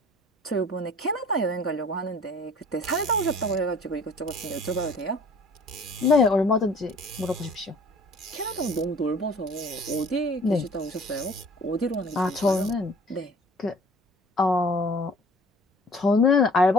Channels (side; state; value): both; normal; correlation 0.50